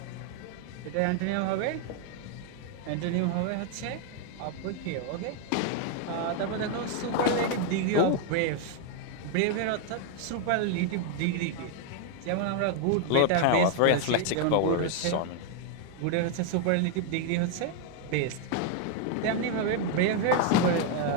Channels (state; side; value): different; both; correlation 0.00